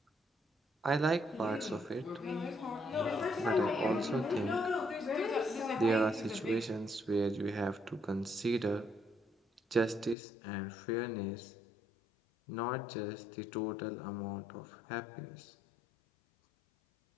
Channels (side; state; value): right; drops out; at 10.2 s